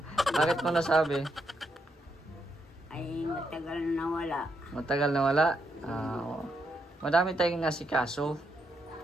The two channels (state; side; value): normal; both; correlation 0.79